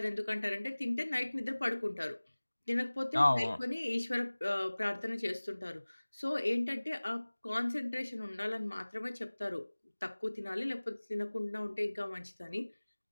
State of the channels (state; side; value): inverted; both; correlation -1.00